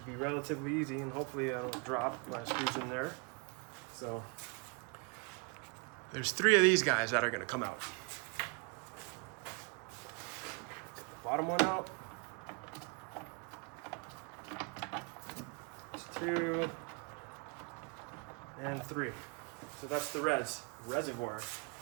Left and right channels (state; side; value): quieter; left; 31.9 dB